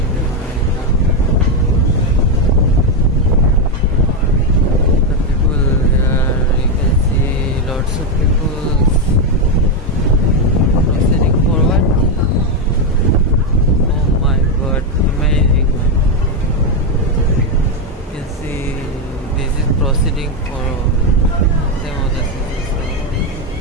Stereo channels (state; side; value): normal; both; correlation 0.05